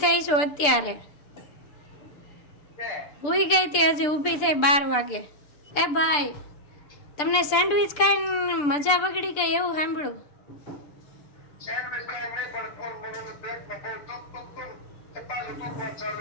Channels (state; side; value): late; right; 6.8 ms